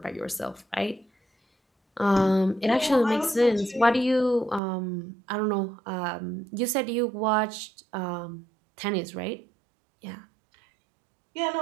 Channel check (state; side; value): drops out; left; at 4.6 s